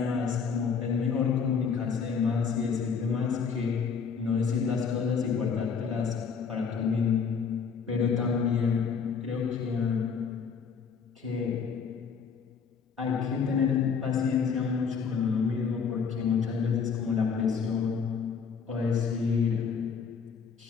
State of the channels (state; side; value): quieter; right; 6.1 dB